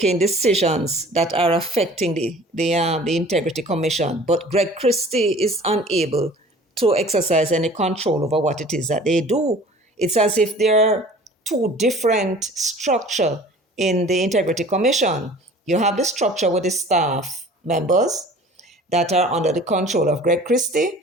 decisions that are affecting the Integrity Commission, but Greg Christie is unable to exercise any control over what it is that they do. It's as if there are two different structures in the Integrity Commission. You have the structure with the staff members that are under the control of Greg Christie,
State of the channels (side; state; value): both; normal; correlation 0.46